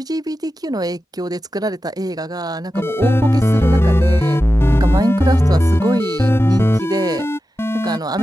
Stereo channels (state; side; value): normal; both; correlation 0.92